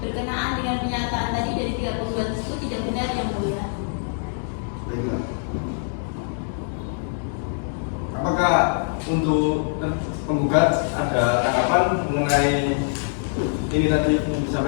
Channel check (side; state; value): right; silent; digital silence